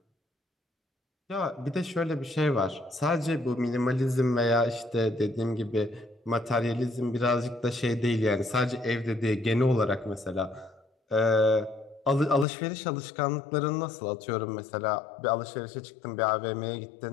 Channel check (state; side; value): drops out; right; at 12.5 s